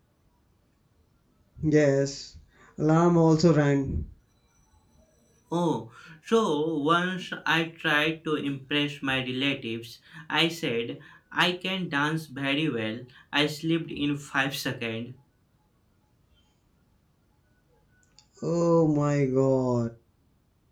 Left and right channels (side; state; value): both; identical; correlation 1.00